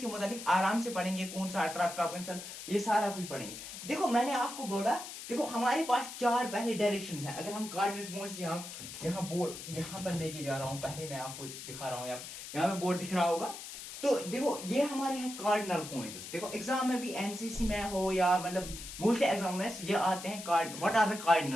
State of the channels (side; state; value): left; noise; hiss, 10 dB below the sound